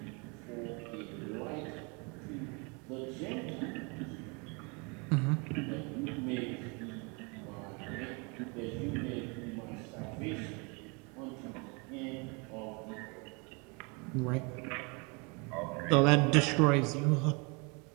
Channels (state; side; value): quieter; left; 30.0 dB